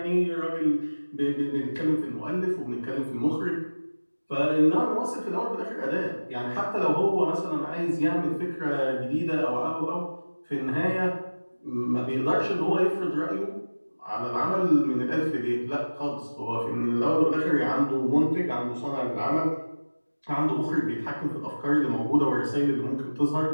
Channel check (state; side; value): inverted; both; correlation -1.00